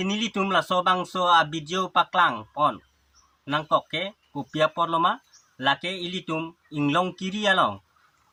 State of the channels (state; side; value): identical; both; correlation 1.00